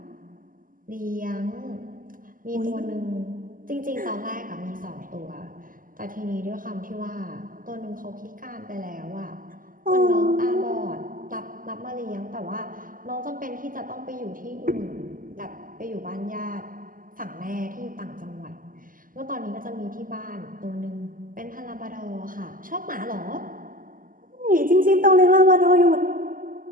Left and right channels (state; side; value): late; left; 0.40 ms